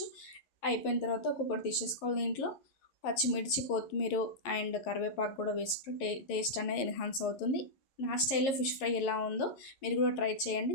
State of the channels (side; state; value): right; late; 11 ms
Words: అయిపోయిన తర్వాత ఒక్కొక్కటి తీసేసుకోవాలి. దీంట్లో పచ్చిమిర్చి, కొత్తిమీర అండ్ కరివేపాకు కూడా వేసుకుంటే టేస్ట్ అనేది ఎన్హాన్స్ అవుతుంది. నా స్టైల్లో ఫిష్ ఫ్రై ఎలా ఉందో మీరు కూడా ట్రై